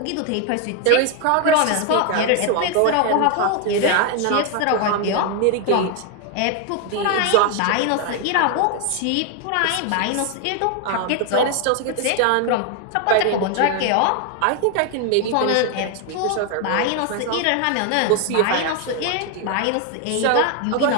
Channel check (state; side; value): different; both; correlation 0.01